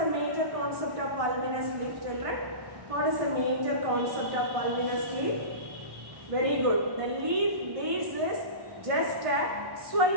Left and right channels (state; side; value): late; left; 1.6 ms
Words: major concept of pulvinous leaf, children? What is the major concept of pulvinous leaf? Very good. The leaf base is just a